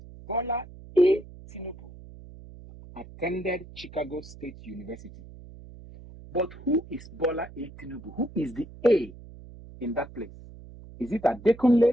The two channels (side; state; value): right; noise; hum, 17 dB below the sound